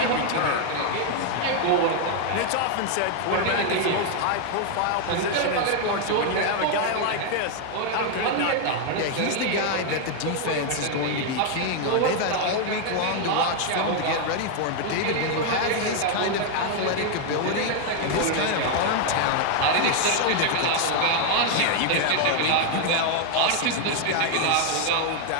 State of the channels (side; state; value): both; different; correlation 0.00